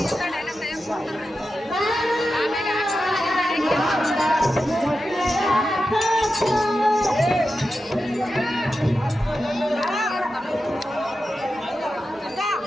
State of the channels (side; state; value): both; normal; correlation 0.91